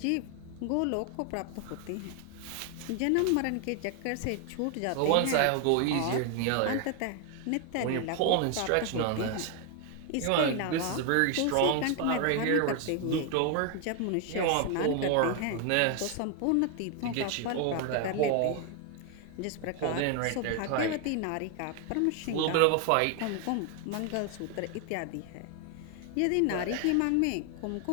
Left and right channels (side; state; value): both; different; correlation 0.00